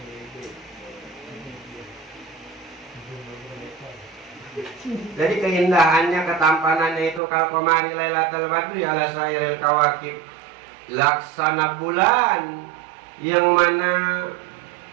Jadi keindahannya, ketampanannya itu kal qamari lailatul badri ala sairil kawakib, laksana bulan yang mana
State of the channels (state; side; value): drops out; left; at 7.2 s